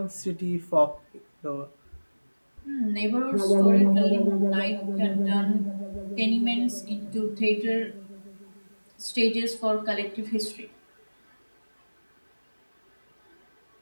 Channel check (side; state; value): both; inverted; correlation -1.00